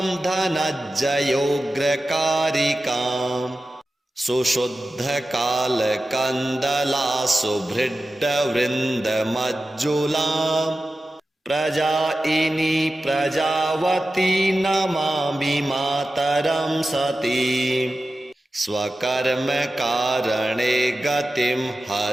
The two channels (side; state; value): both; normal; correlation 0.94